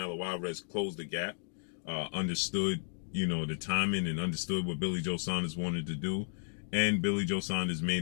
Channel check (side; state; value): right; silent; digital silence